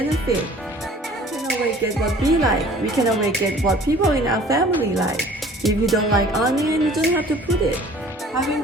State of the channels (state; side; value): normal; both; correlation 0.50